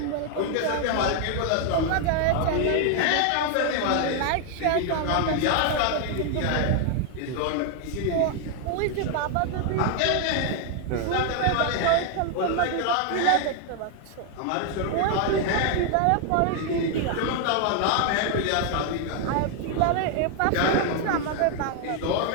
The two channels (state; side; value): different; both; correlation 0.00